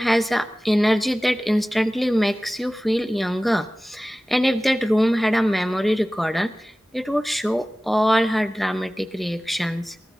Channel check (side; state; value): both; normal; correlation 0.97